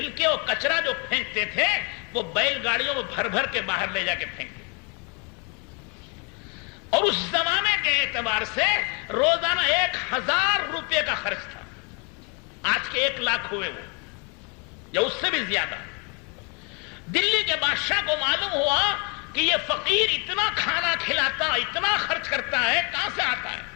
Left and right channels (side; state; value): right; quieter; 34.0 dB